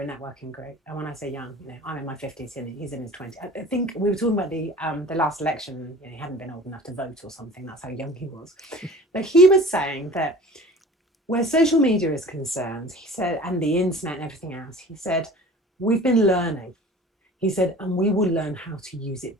a networking group, and when I say young, I'm in my 50s and he's in his 20s. I think we were talking about the last election. He hadn't been old enough to vote or something. That's how young he was. But he was saying that where social media is concerned, he said, and the internet and everything else, he said, we've been learning. He said, and we will learn how to use it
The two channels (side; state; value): both; normal; correlation 0.42